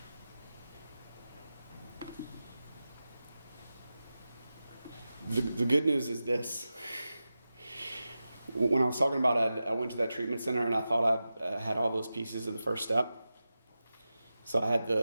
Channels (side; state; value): both; inverted; correlation -0.93